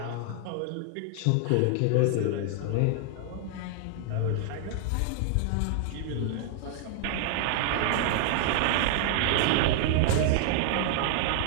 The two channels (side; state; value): both; different; correlation 0.00